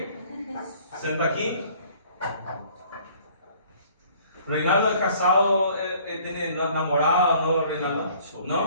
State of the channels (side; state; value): both; inverted; correlation -0.55